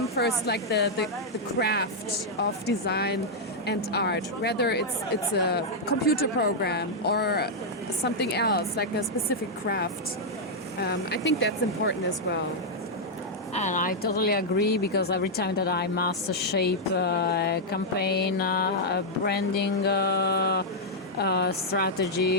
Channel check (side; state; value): both; normal; correlation -0.04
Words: first the craft of design and art, whether it's a computer program or something else, like a specific craft. I think that's important as well. And I totally agree, because every time that I must shape a campaign, a branding